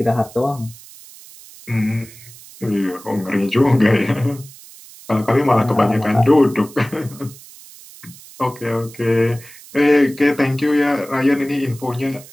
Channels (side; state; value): right; noise; hiss, 20 dB below the sound